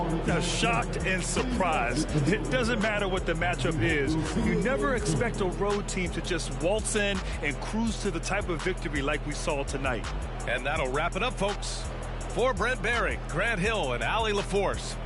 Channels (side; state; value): both; identical; correlation 1.00